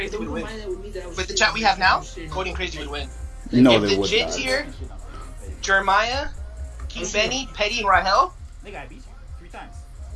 would win. With the chat we have now, Coding Crazy would win. No, if they the would Jits not. here, Jeremiah, King Benny, Petty, and Rahel. Nigga, I beat you 3 times.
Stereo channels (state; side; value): identical; both; correlation 1.00